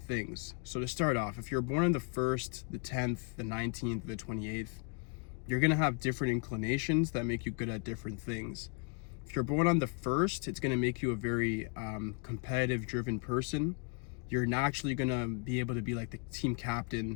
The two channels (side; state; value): right; quieter; 35.2 dB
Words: things. So to start off, if you're born on the 1st, the 10th, the 19th, the 28th, you're going to have different inclinations that make you good at different things. If you're born on the 1st, it's going to make you a very competitive, driven person. You're naturally going to be able to be like the team